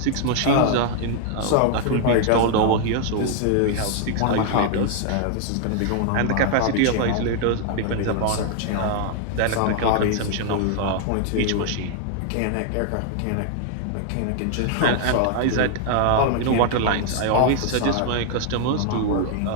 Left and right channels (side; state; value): both; different; correlation 0.00